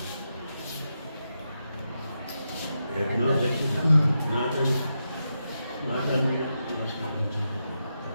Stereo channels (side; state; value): both; inverted; correlation -0.87